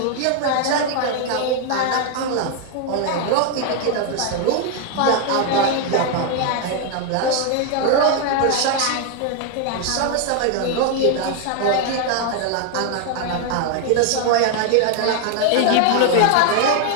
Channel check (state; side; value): different; both; correlation 0.00